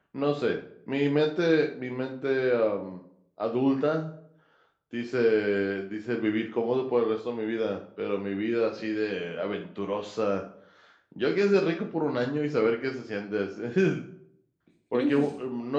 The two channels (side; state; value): both; identical; correlation 1.00